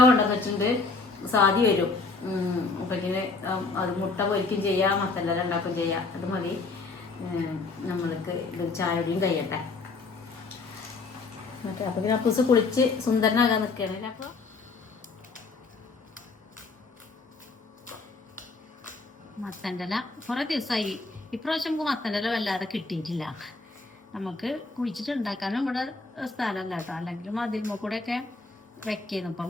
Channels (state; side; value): quieter; right; 3.9 dB